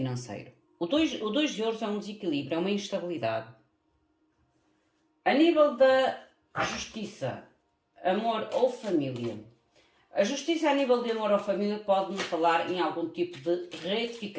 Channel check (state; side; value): identical; both; correlation 1.00